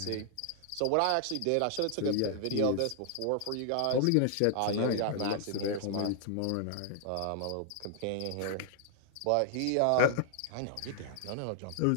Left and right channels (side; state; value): both; different; correlation -0.01